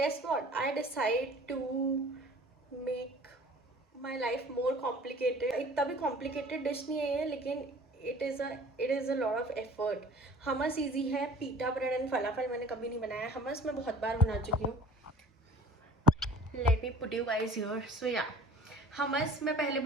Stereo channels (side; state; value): both; normal; correlation 0.47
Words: what? I decide to make my life more complicated. इतना भी complicated डिश नहीं है ये, लेकिन it is a lot of effort. Hummus easy है, pita bread and falafel मैंने कभी नहीं बनाया. हमस मैं बहुत बार बना चुकी हूँ. Let me put you guys here. So yeah, hummus मैं पहले